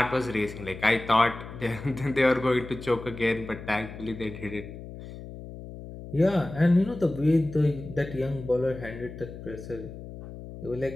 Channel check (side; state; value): left; noise; hum, 13 dB below the sound